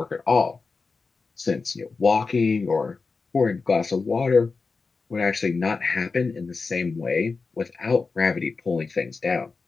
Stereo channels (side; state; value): right; quieter; 4.4 dB